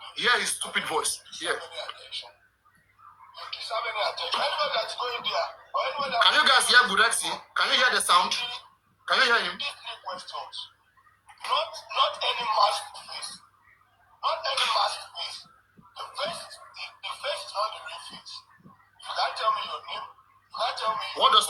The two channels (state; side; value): identical; both; correlation 1.00